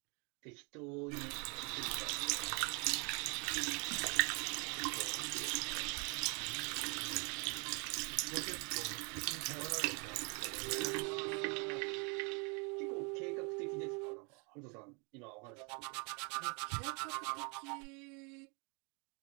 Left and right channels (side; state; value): left; quieter; 33.5 dB